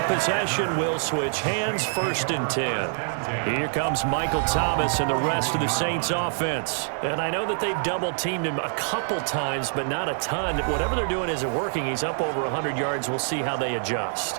possession will switch hands, 1st and 10. Here comes Michael Thomas and the rest of the Saints offense. And I know that they've double-teamed him a couple times, but not a ton. Whatever they're doing isn't working. He's up over 100 yards. We'll see how they adjust.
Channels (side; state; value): left; silent; 56 dB below the other